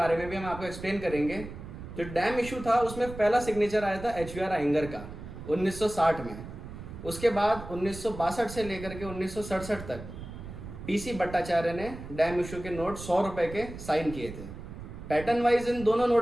में भी हम आपको एक्सप्लेन करेंगे। जो डैम इशू था उसमें पहला सिग्नेचर आया था HVR आइंगर का 1960 में। उसके बाद 1962 से लेकर के 1967 तक PC भट्टाचार्य ने डैम इशू के नोट 100 रुपए के साइन किए थे। पैटर्न वाइज इन दोनों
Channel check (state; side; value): noise; right; rumble, 11 dB below the sound